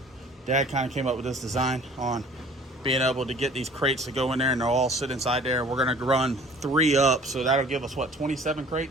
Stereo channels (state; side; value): normal; both; correlation 0.50